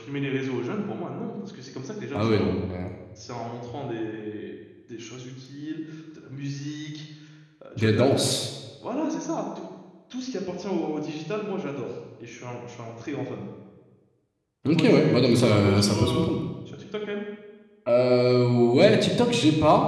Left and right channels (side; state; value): both; identical; correlation 1.00